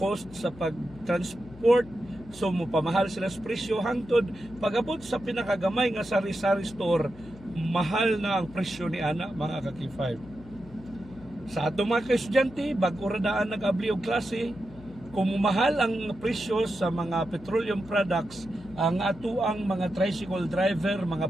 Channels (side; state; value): left; noise; hum, 19 dB below the sound